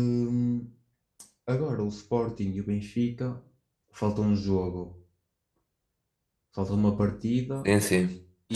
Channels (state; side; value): identical; both; correlation 1.00